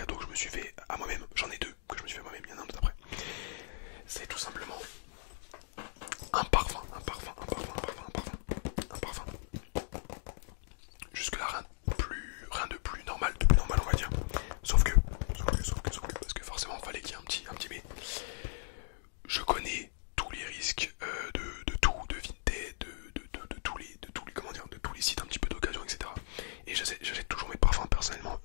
que je me suis fait à moi-même. J'en ai deux que je me suis fait à moi-même, il y en a un autre après. C'est tout simplement un parfum. Jusque là rien de plus normal, on va dire. Sauf que, parce que forcément il fallait qu'il y ait un petit mais. Je connais tous les risques de tout, de Vinted, de tous les sites un petit peu d'occasion, etc. Et j'achète toujours mes parfums personnellement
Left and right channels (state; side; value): silent; right; digital silence